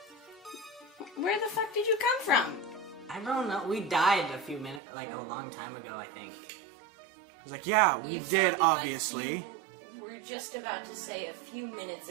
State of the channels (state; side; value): drops out; left; at 4.8 s